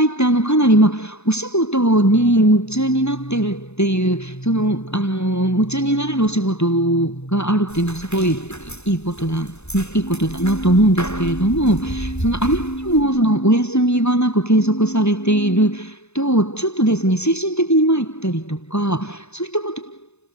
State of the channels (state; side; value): late; right; 0.81 ms